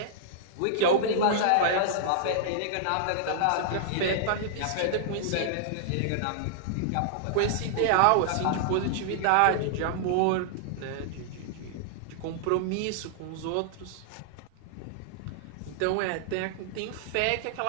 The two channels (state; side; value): different; both; correlation -0.01